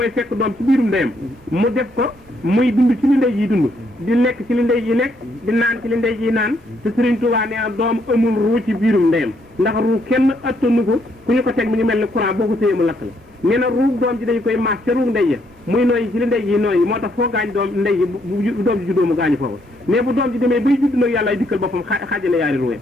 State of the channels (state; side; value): normal; both; correlation 0.72